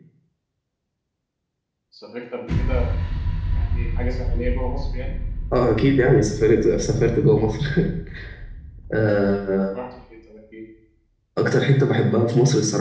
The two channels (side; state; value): both; identical; correlation 1.00